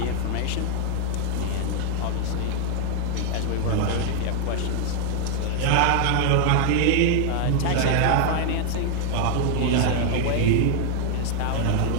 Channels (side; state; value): both; different; correlation -0.01